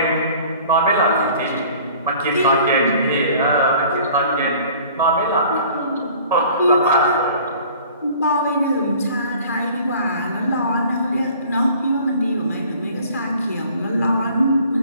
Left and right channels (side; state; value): both; inverted; correlation -0.50